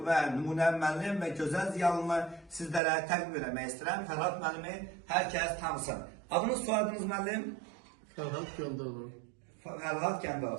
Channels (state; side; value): drops out; left; at 2.8 s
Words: və nümunəvi müəllim və gözəl ziyalını sizlərə təqdim etmək istəyirəm. Fərhad müəllimi hər kəs tanısın. Adınız, soyadınız müəllim? Fərhad Gəndalov. Fərhad